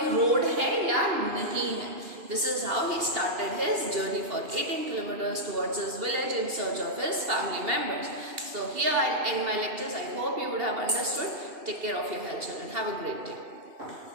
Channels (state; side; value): late; left; 2.8 ms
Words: road है या नहीं है. This is how he started his journey for 18 kilometers towards his village in search of his family members. So here I end my lectures. I hope you would have understood. Take care of your health, children. Have a great day.